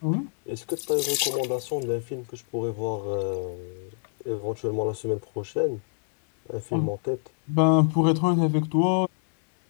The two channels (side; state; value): right; silent; digital silence